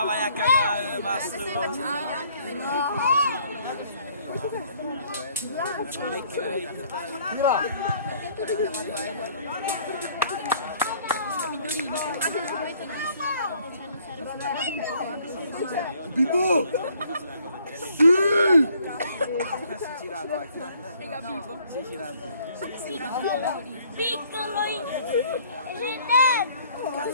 vai a cagare, basta! Tira! Bibo! Sì! Piccolo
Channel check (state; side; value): inverted; both; correlation -0.61